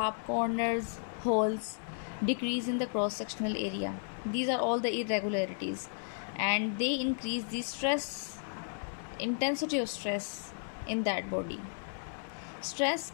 corners, holes, decrease in the cross-sectional area. These are all the irregularities, and they increase the intensity of stress in that body. Stress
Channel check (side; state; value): right; silent; 55 dB below the other